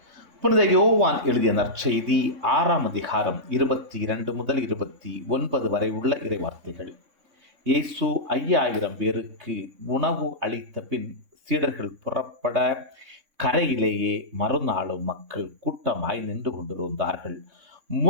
புனித யோவான் எழுதிய நற்செய்தி 6ஆம் அதிகாரம் 22 முதல் 29 வரை உள்ள இறைவார்த்தைகள். இயேசு 5000 பேருக்கு உணவு அளித்த பின் சீடர்கள் புறப்பட கரையிலேயே மறுநாளும் மக்கள் கூட்டமாய் நின்று கொண்டிருந்தார்கள்.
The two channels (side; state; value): left; late; 3.6 ms